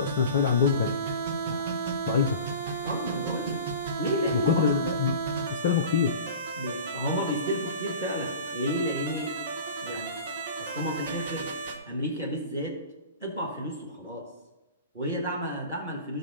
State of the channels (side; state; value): both; inverted; correlation -0.37